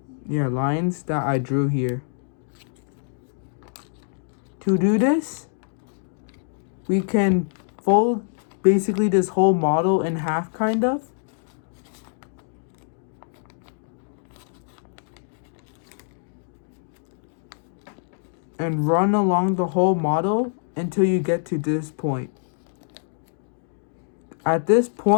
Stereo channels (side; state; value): right; silent; digital silence